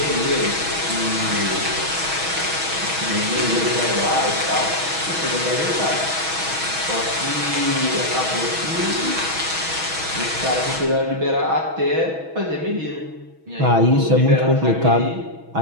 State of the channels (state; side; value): late; left; 6.2 ms